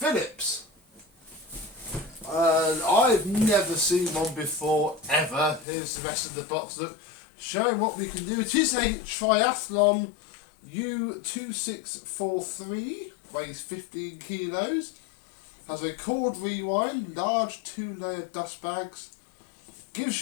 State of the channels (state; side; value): drops out; right; at 5.7 s